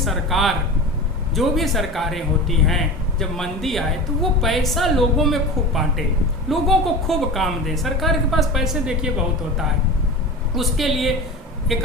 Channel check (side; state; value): both; normal; correlation 0.30